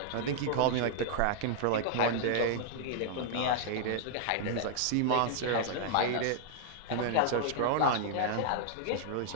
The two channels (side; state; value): both; different; correlation -0.01